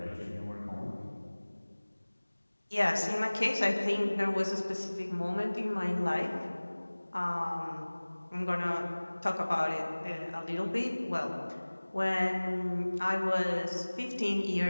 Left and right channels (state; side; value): inverted; both; correlation -1.00